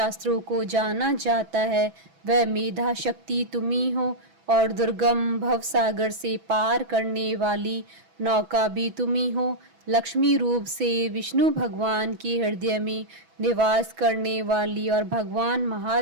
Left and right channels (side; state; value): left; late; 6.1 ms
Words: को जाना जाता है, वह मेधा शक्ति तुम ही हो, और दुर्गम भवसागर से पार करने वाली नौका भी तुम ही हो। लक्ष्मी रूप से विष्णु भगवान के हृदय में निवास करने वाली और भगवान